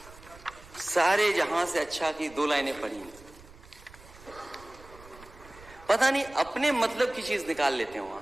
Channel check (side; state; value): right; noise; rumble, 21 dB below the sound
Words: सारे जहां से अच्छा की 2 लाइनें पढ़ी, पता नहीं अपने मतलब की चीज निकाल लेते हैं वहां